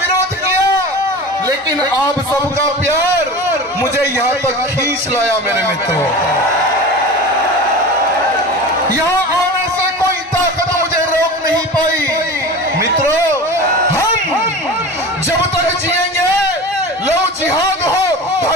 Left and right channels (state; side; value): normal; both; correlation 0.33